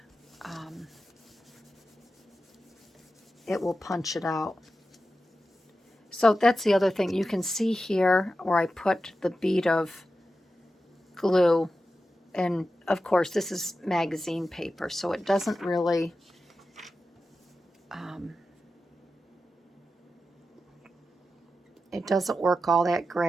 it will punch it out. So that's the other thing. You can see here where I put the bead of glue. And of course, this is magazine paper, so it doesn't really It doesn't work all that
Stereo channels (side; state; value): both; normal; correlation 0.91